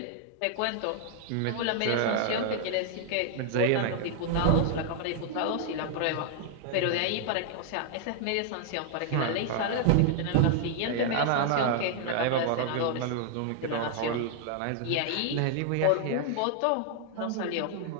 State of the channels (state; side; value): different; both; correlation 0.00